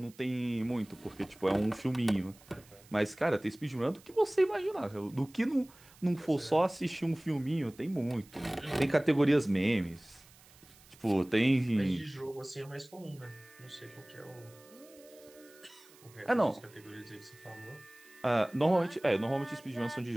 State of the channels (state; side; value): noise; right; hiss, 25 dB below the sound